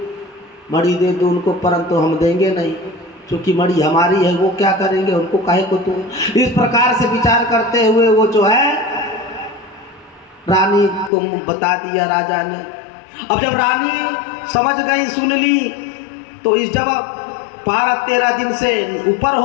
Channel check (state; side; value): drops out; right; at 11.1 s